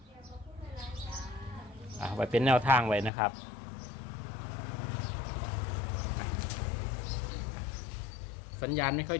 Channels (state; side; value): drops out; right; at 3.1 s